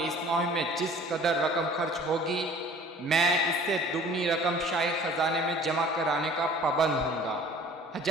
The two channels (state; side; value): normal; both; correlation 0.49